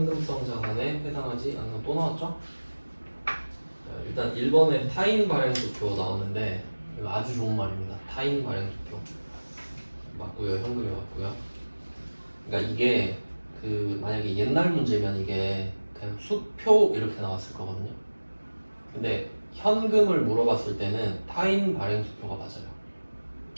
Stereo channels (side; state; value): both; inverted; correlation -1.00